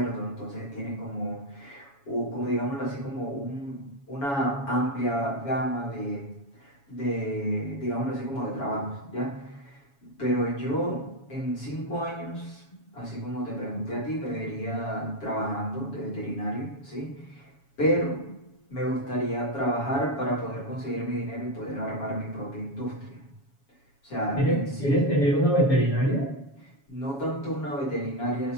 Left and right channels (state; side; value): late; right; 7.2 ms